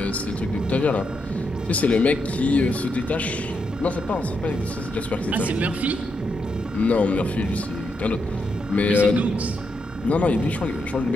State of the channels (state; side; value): normal; both; correlation 0.82